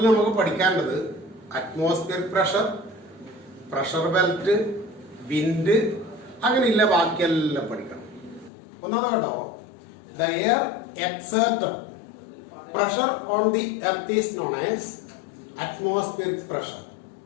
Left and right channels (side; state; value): right; drops out; at 8.5 s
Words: നമുക്ക് പഠിക്കേണ്ടത് atmosphere pressure, pressure belt, wind, അങ്ങനെയില്ല ബാക്കിയെല്ലാം പഠിക്കണം. ഒന്നാമത് കേട്ടോ, the air exerted pressure on the earth is known as atmospheric pressure.